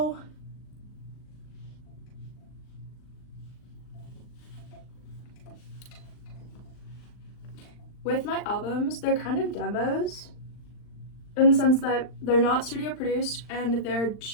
with my albums, they're kind of demos in the sense that they're not studio produced and they're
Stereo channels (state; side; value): late; right; 39 ms